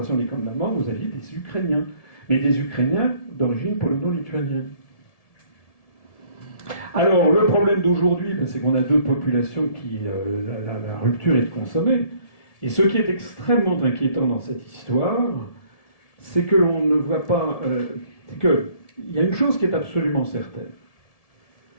les camps de la mort, vous aviez des Ukrainiens. Mais des Ukrainiens d'origine polono-lituanienne. Alors, le problème d'aujourd'hui, c'est qu'on a deux populations qui... la rupture est de consommer. Et ce qui est extrêmement inquiétant dans cette histoire, c'est que l'on ne voit pas... c'est qu'il y a une chose qui est absolument certaine.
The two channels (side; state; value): right; late; 1.7 ms